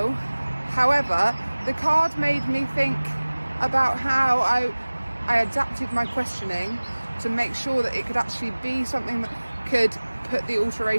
However, the card made me think about how I adapted my questioning to make sure that it could actually be something that could put the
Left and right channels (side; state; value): both; inverted; correlation -1.00